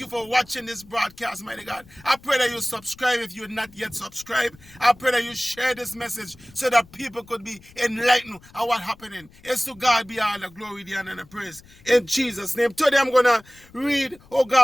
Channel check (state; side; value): noise; left; rumble, 25 dB below the sound